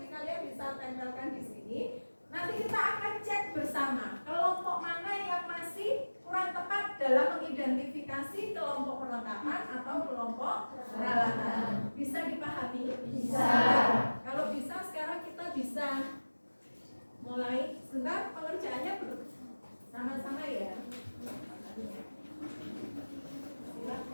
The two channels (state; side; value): inverted; both; correlation -1.00